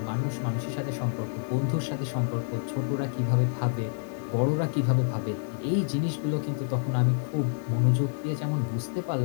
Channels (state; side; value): silent; right; 59 dB below the other